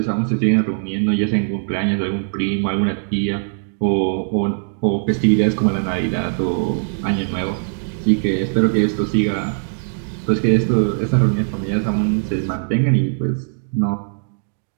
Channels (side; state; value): left; silent; digital silence